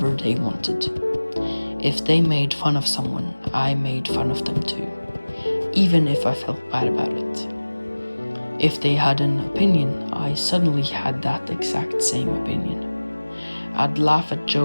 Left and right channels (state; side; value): inverted; both; correlation -1.00